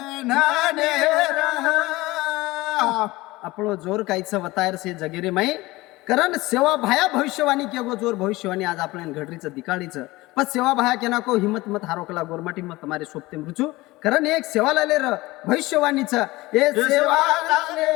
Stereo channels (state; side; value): quieter; right; 20.1 dB